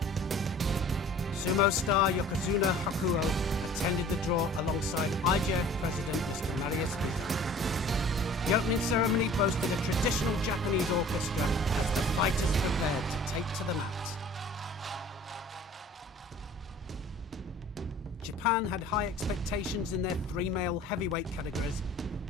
Sumo star Yokozuna Hakuo attended the draw alongside IJF President Mr. Marius Biza. The opening ceremony boasted a traditional Japanese orchestra as the fighters prepared to take to the mat. Japan had high expectations in their three male heavyweight categories,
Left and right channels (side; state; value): both; normal; correlation 0.48